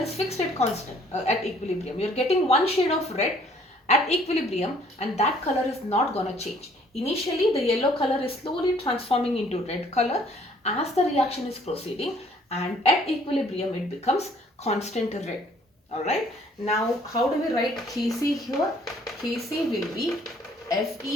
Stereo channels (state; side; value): normal; both; correlation 0.60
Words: fixed at constant at equilibrium. You are getting one shade of red at equilibrium, and that color is not gonna change. Initially the yellow color is slowly transforming into red color as the reaction is proceeding, and at equilibrium it becomes constant red. Alright, now how do we write Kc here? Kc will be